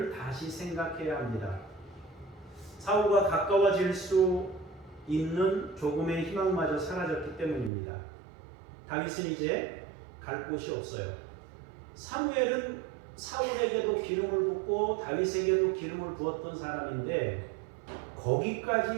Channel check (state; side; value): drops out; left; at 7.7 s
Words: 다시 생각해야 합니다. 사울과 가까워질 수 있는 조금의 희망마저 사라졌기 때문입니다. 다윗은 이제 갈 곳이 없어요. 사무엘은 사울에게도 기름을 붓고 다윗에게도 기름을 부었던 사람인데